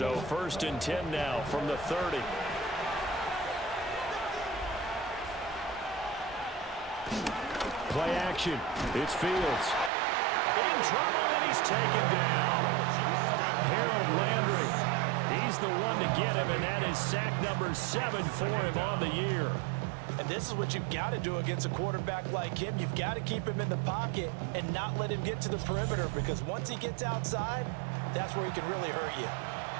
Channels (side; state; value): left; drops out; at 9.9 s